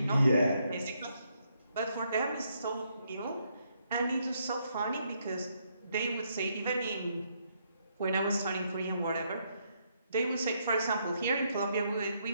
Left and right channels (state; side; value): inverted; both; correlation -0.75